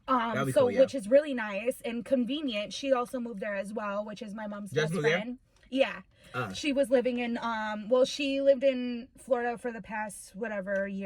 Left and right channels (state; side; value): identical; both; correlation 1.00